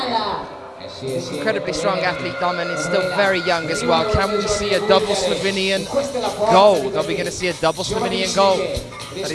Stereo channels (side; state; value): both; identical; correlation 1.00